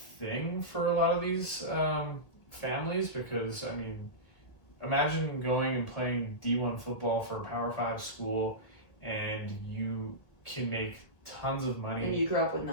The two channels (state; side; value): late; right; 1.8 ms